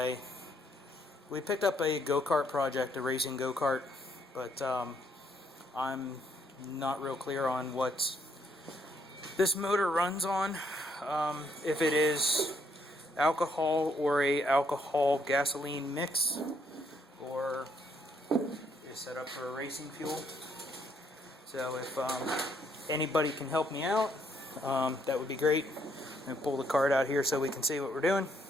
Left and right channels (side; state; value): both; normal; correlation 0.71